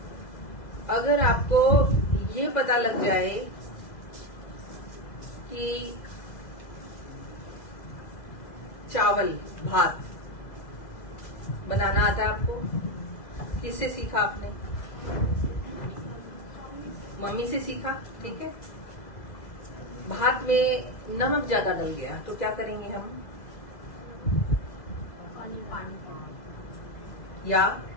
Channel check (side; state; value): right; late; 2.0 ms